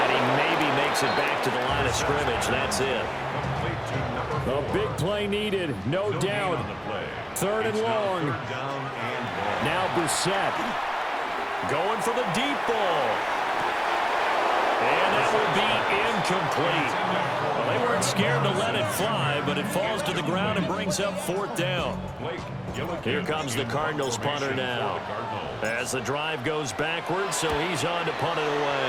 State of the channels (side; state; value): both; identical; correlation 1.00